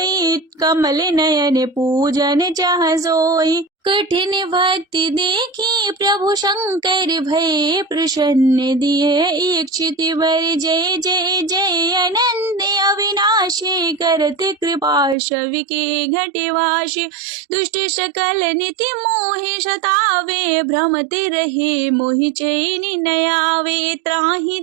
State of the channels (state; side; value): drops out; left; at 15.2 s